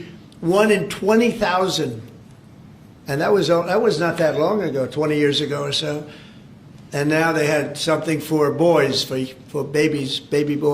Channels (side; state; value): both; identical; correlation 1.00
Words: 1 in 20,000. And that was not that long ago, 20 years ago or so. And now they had something for boys, for babies, baby